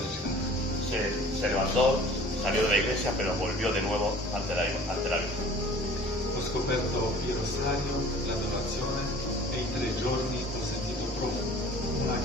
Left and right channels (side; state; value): both; normal; correlation 0.47